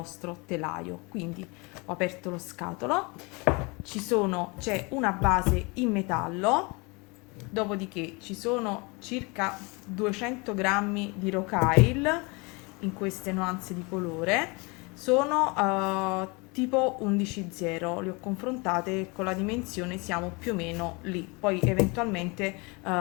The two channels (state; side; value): quieter; right; 28.4 dB